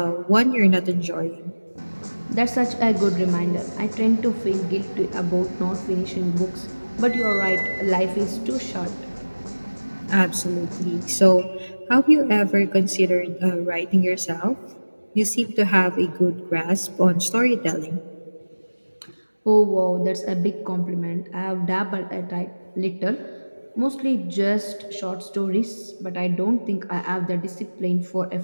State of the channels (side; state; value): both; inverted; correlation -1.00